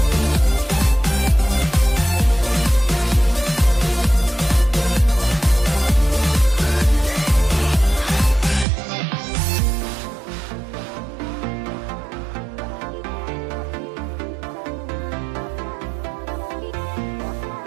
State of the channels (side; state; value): left; drops out; at 8.7 s